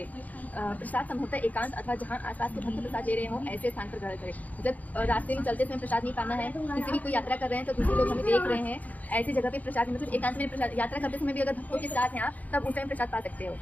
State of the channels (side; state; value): right; late; 0.077 ms